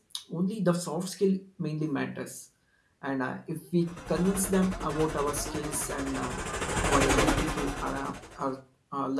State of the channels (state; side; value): identical; both; correlation 1.00